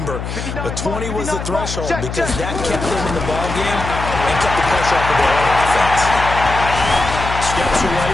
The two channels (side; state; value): left; noise; hum, 6 dB below the sound